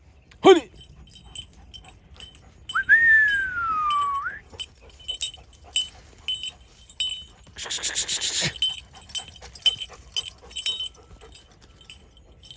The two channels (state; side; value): identical; both; correlation 1.00